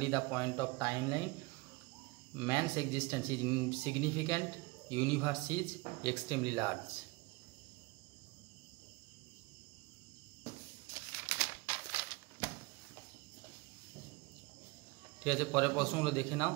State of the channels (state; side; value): quieter; left; 25.2 dB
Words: the point of timeline. Man's existence is insignificant. Universe is extremely large. ঠিক আছে, পরের প্রশ্নগুলো দেখে নাও।